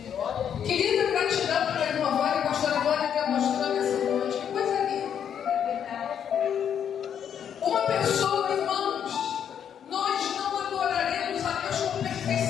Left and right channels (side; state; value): right; quieter; 8.6 dB